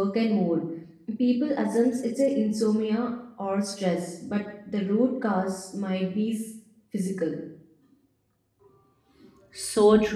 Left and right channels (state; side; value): identical; both; correlation 1.00